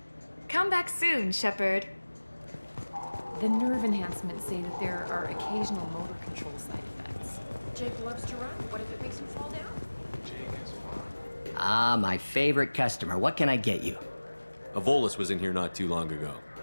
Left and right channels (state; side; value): inverted; both; correlation -1.00